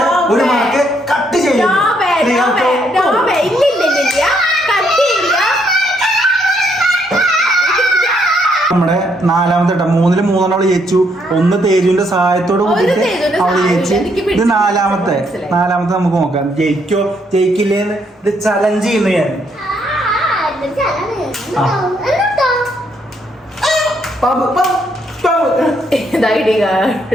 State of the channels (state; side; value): normal; both; correlation 0.72